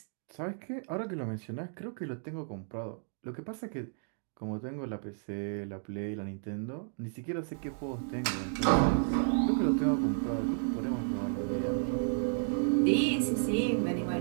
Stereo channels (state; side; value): silent; left; digital silence